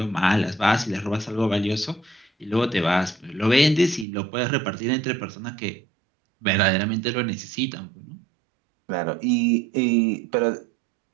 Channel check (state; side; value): drops out; left; at 4.0 s